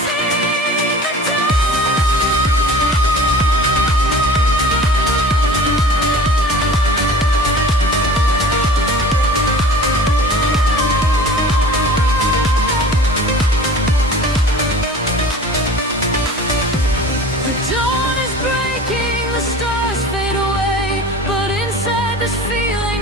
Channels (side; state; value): both; normal; correlation 0.41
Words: the dawn is breaking, the stars fade away, but inside this feeling